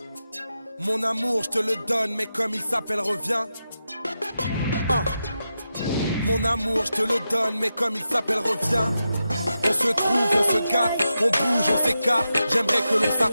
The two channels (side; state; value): both; inverted; correlation -0.89